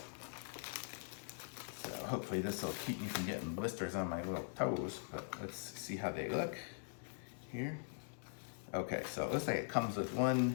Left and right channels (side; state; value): right; silent; digital silence